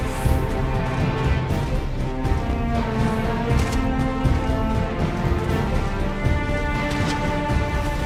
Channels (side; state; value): both; identical; correlation 1.00